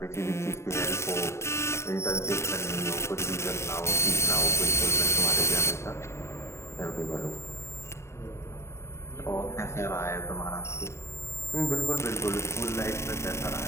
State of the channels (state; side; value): late; right; 0.13 ms